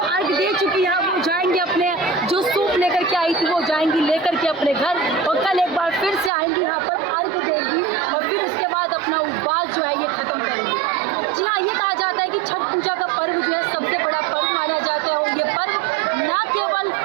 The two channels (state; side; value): drops out; left; at 6.3 s